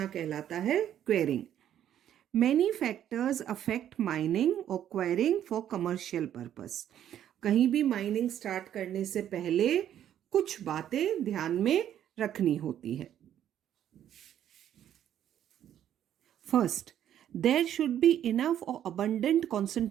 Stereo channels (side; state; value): left; quieter; 10.6 dB